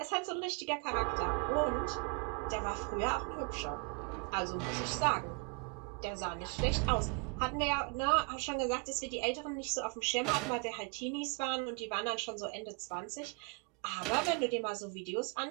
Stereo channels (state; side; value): quieter; left; 34.0 dB